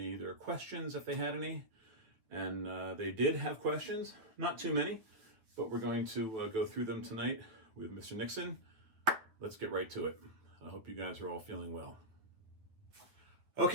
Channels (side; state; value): left; late; 8.8 ms